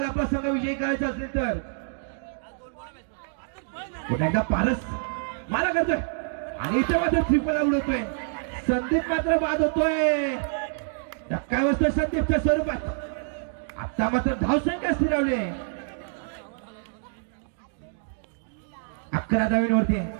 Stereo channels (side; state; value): left; silent; digital silence